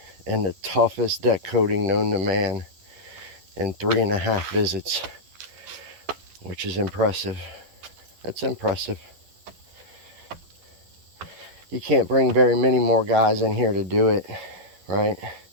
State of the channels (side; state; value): left; late; 11 ms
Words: in the toughest deck coating known to man in 3.5 visits, which is impressive. That's impressive. You can't bring very many more guys in here to do it, right?